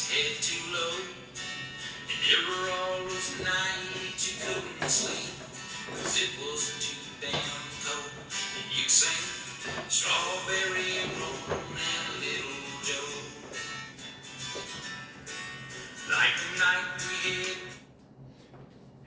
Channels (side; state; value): both; identical; correlation 1.00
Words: head too low. And there were all those nights you couldn't sleep, 'cause it was too damn cold. And you'd sing Strawberry Moon and Little Joe. Like the night we had.